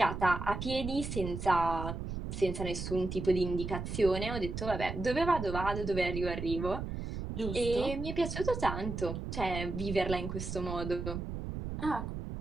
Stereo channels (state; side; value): noise; right; rumble, 5 dB below the sound